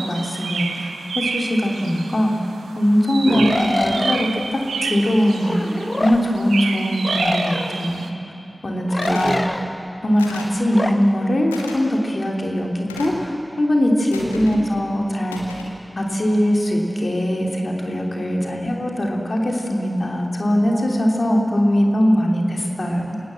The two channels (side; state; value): both; normal; correlation 0.96